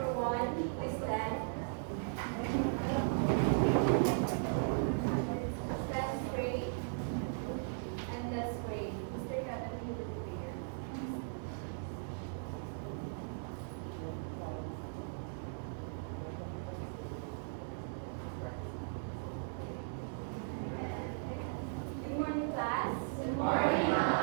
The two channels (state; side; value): silent; left; digital silence